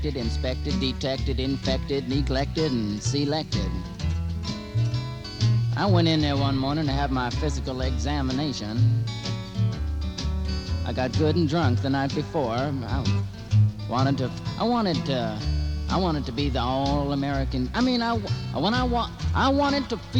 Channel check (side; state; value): both; identical; correlation 1.00